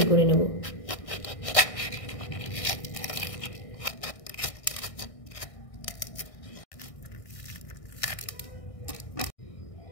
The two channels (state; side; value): late; right; 1.6 ms